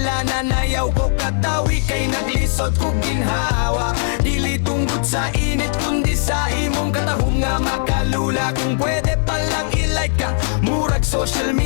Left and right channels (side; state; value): right; silent; digital silence